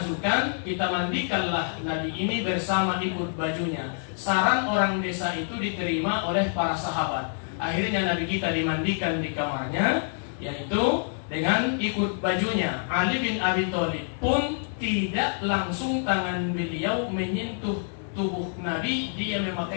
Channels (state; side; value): silent; right; 60 dB below the other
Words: kita mandikanlah Nabi ini bersama ikut bajunya. Saran orang desa itu diterima oleh para sahabat. Akhirnya Nabi kita dimandikan di kamarnya, yaitu dengan ikut bajunya. Ali bin Abi Thalib pun tidak langsung tangan beliau menyentuh tubuh Nabi, dia